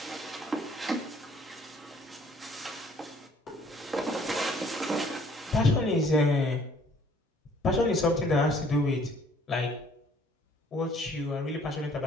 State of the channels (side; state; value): both; normal; correlation 0.59